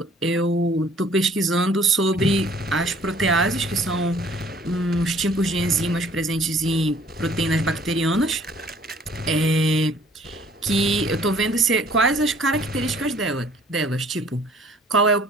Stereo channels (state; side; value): normal; both; correlation 0.56